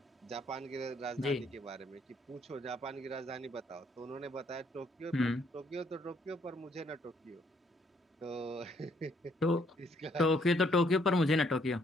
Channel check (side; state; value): both; normal; correlation 0.68